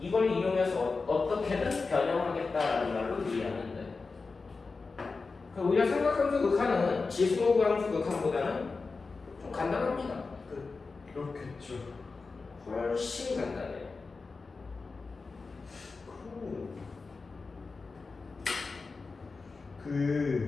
이용해서 어떻게든 변형하겠다라는 말로 이해하면 돼. 오히려 삼각함수 극한은 지수함수 극한보다는 좀 간단합니다. 그렇겠죠. 훨씬 간단해.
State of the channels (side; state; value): right; quieter; 4.2 dB